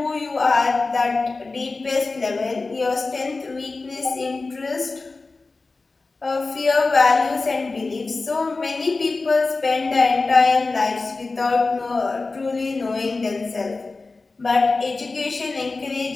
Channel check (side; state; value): right; quieter; 3.7 dB